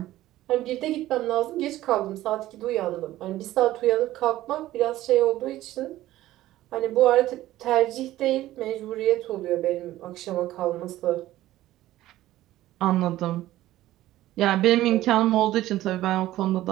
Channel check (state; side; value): quieter; left; 15.1 dB